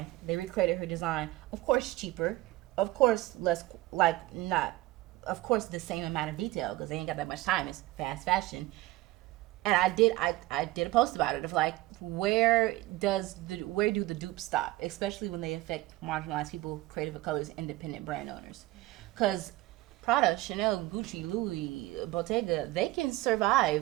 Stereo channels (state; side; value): quieter; left; 18.1 dB